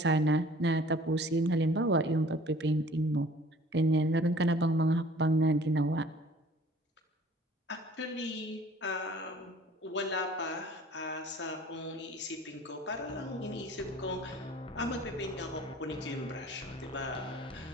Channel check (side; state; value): both; normal; correlation 0.51